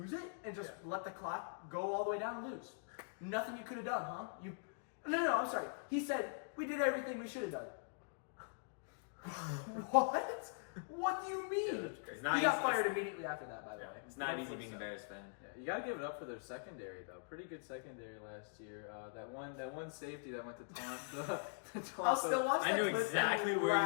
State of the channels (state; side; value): silent; right; digital silence